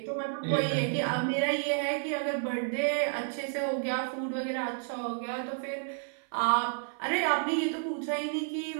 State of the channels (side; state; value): left; silent; 56 dB below the other